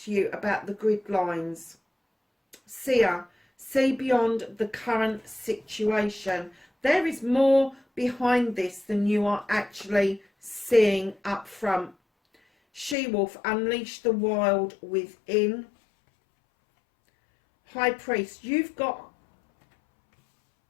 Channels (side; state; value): right; drops out; at 13.0 s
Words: to you about the grid lines. Seer, see beyond the current situation. There is more behind this than you are actually seeing up front. She-wolf, unleash the wild within. High priest, you've got...